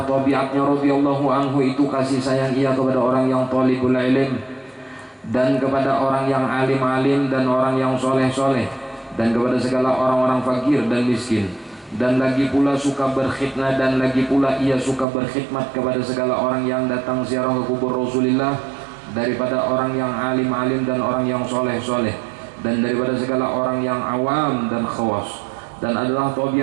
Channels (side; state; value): left; drops out; at 15.1 s